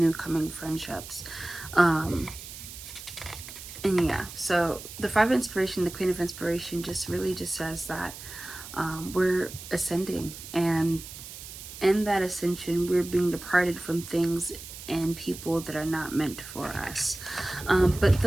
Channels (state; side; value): noise; right; hiss, 13 dB below the sound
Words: coming friendships. And yeah, so the 5 of inspiration, the Queen of Inspiration, just really just says that we're ascending, and in that ascension we're being departed from things and people that are not meant for us. But